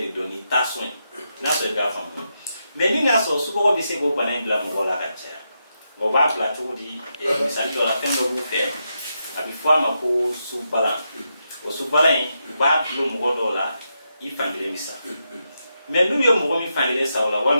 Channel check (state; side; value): inverted; both; correlation -0.84